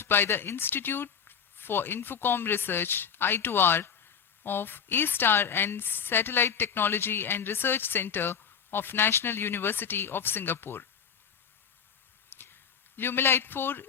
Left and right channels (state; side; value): quieter; right; 7.3 dB